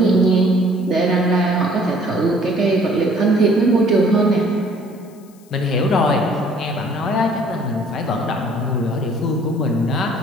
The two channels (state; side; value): noise; left; hiss, 29 dB below the sound